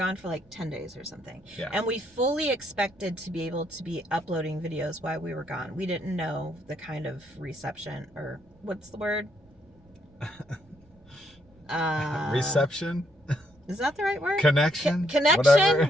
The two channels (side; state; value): right; noise; rumble, 29 dB below the sound